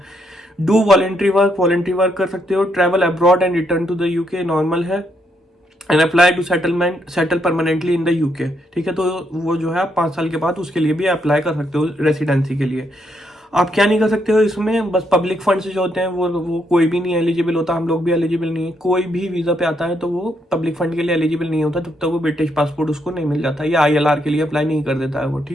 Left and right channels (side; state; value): both; normal; correlation 0.76